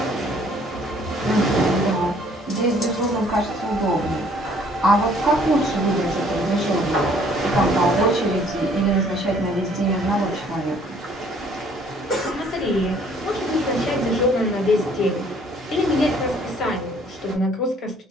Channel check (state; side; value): normal; both; correlation 0.59